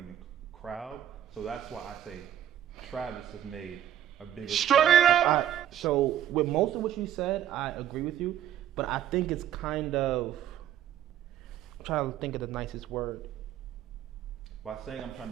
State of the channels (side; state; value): left; quieter; 11.0 dB